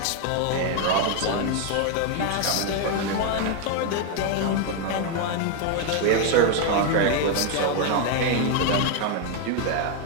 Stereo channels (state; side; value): different; both; correlation 0.01